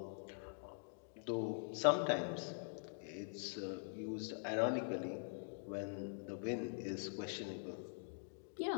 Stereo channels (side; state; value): right; silent; digital silence